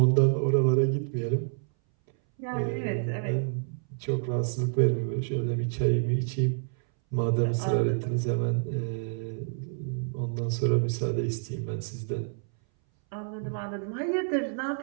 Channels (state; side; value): silent; left; 59 dB below the other